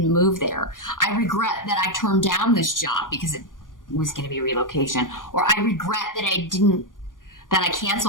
move there. I regret that I turned down this job because it was going to be relocation. Or I regret that I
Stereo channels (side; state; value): right; late; 0.89 ms